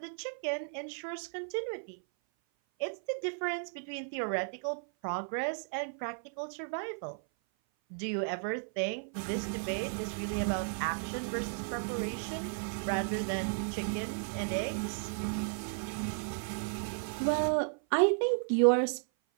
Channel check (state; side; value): silent; left; 55 dB below the other